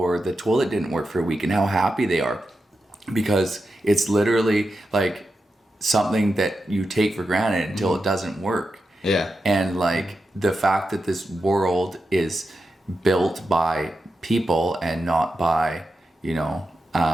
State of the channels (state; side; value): normal; both; correlation 0.89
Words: the toilet didn't work for a week, and how happy they are, because it's literally like something that you take for granted until it doesn't work. Yeah. And like the fact that this world is built by people and not by,